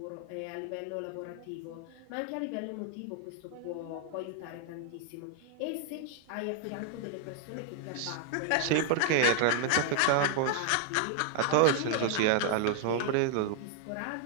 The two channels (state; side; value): different; both; correlation 0.00